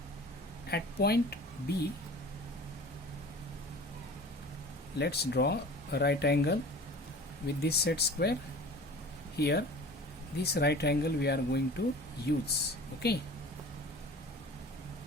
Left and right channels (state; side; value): normal; both; correlation 0.41